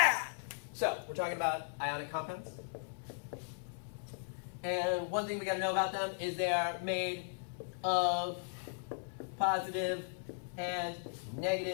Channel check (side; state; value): right; silent; 53 dB below the other